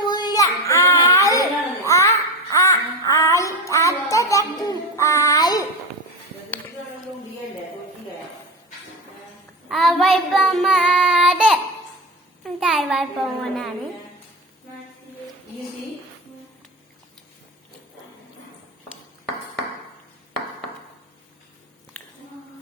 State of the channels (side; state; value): both; normal; correlation 0.21